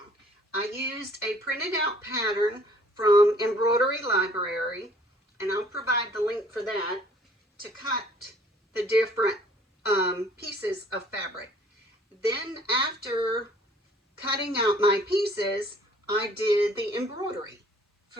I used a printed out pattern from Embroidery Library, and I'll provide the link for that, to cut the different pieces of fabric. Then after cutting out my pieces, I did the embroidery.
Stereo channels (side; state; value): both; normal; correlation 0.56